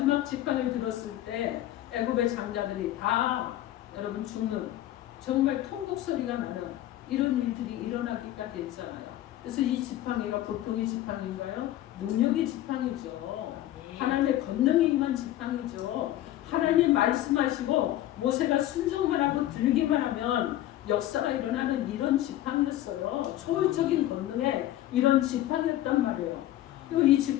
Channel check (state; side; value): quieter; right; 13.8 dB